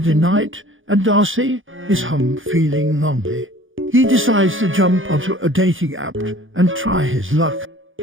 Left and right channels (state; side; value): late; left; 0.58 ms